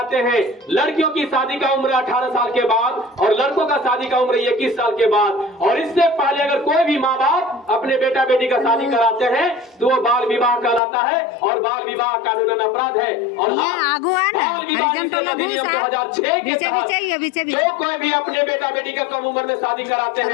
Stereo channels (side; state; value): right; drops out; at 10.8 s